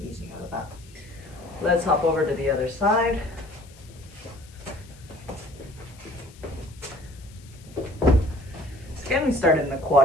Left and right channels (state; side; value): noise; left; hiss, 24 dB below the sound